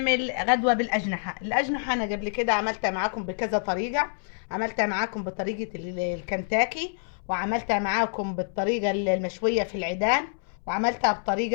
غدوة بالأجنحة. الأجنحة أنا قبل كده عملتها معاكم بكذا طريقة. عملتها معاكم بطريقة الكنتاكي، وعملتها معاكم بالطريقة المشوية في العيدان، وعملتها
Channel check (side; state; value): right; silent; 60 dB below the other